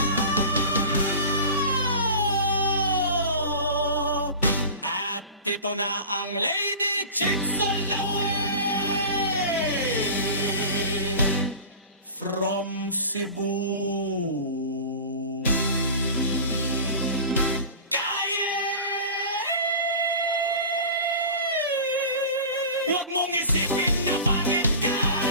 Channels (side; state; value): both; inverted; correlation -0.35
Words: At ito na ang Lady Chicks all the way from Cebu. Huwag mong isipin na pangit ka.